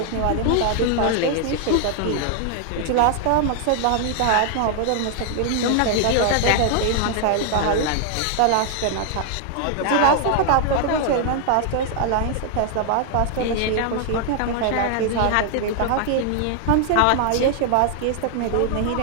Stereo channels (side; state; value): both; different; correlation 0.00